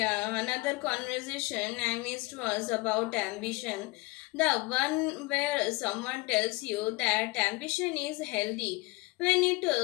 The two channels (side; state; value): right; quieter; 23.3 dB